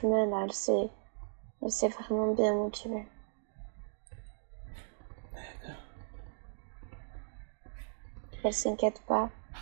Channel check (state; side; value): silent; left; digital silence